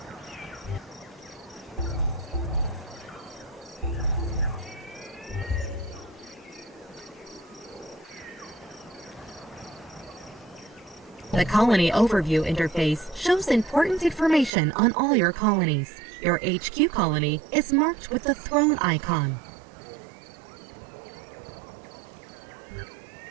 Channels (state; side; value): drops out; left; at 14.5 s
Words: The Colony Overview interface shows important information on all your colonies. Your HQ colony is marked with the throne icon.